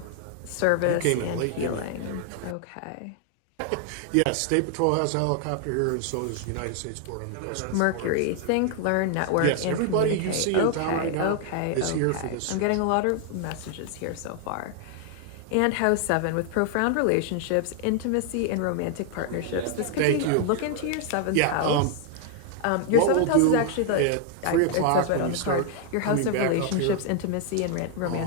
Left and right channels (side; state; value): both; different; correlation 0.00